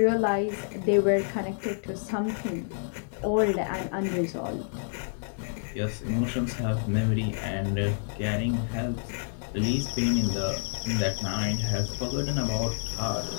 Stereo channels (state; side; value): silent; right; digital silence